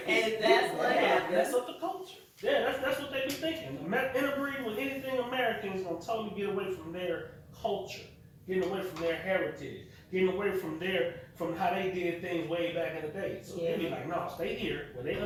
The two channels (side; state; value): both; identical; correlation 1.00